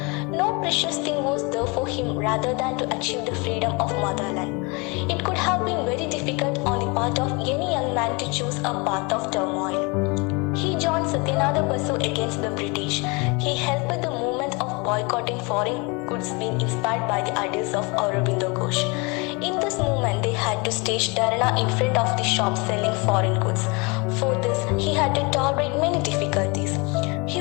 No precious thing was there for him rather than to achieve the freedom of motherland. It could have been very difficult on the part of any young man to choose a path of turmoil. He joined Satyananda Basu against the British. He helped the movement of boycotting foreign goods being inspired by the ideas of Aurobindo Ghosh. In this movement, they had to stage dharana in front of the shops selling foreign goods. For this, he had to tolerate many difficulties.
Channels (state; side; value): quieter; right; 29.0 dB